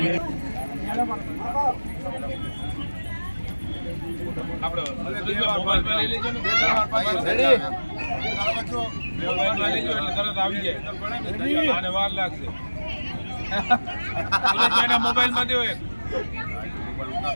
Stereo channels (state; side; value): inverted; both; correlation -1.00